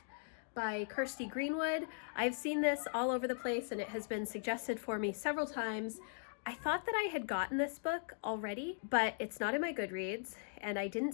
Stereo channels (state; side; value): silent; right; digital silence